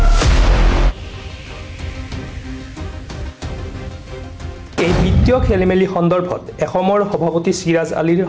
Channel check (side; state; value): both; identical; correlation 1.00